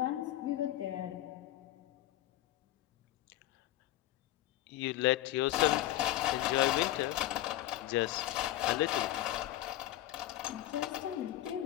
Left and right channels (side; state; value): right; quieter; 14.6 dB